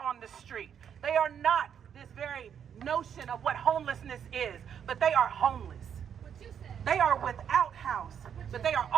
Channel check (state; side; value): quieter; left; 8.3 dB